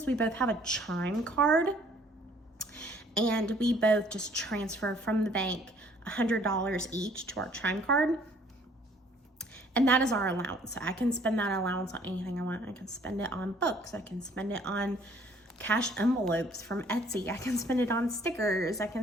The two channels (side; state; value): both; normal; correlation 0.59